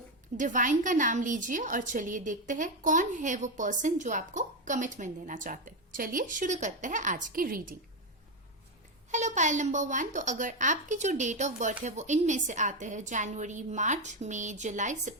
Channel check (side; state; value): both; normal; correlation 0.09